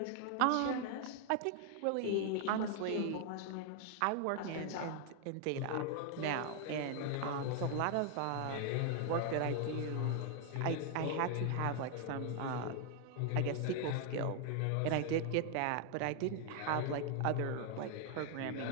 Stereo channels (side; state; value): both; different; correlation 0.00